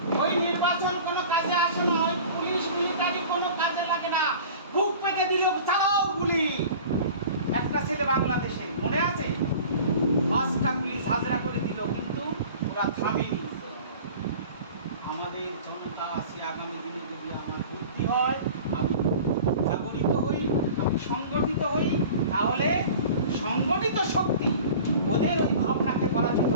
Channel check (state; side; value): inverted; both; correlation -0.41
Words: ওই নির্বাচন কোনো কাজে আসে না, ওই পুলিশ মিলিটারি কোনো কাজে লাগে না, বুক পেতে দিল চালাও গুলি। একটা ছেলে বাংলাদেশে মনে আছে 5টা পুলিশ হাজরা করে দিল, কিন্তু ওরা থামেনি। আমাদের জনতা আছে, আগামী দিনে যদি আমার বুদ্ধি হয়, আমি জাগরিত হই, আমি সংগঠিত হই, তাহলে সংগঠিত শক্তি ওদের ওই ভাবনাকে পরাজিত